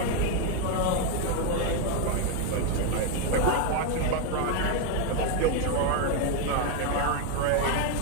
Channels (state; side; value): different; both; correlation 0.01